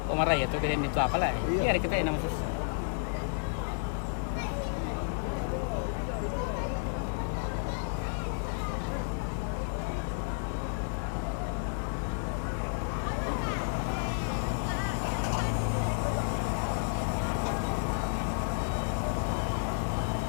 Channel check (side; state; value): right; silent; 57 dB below the other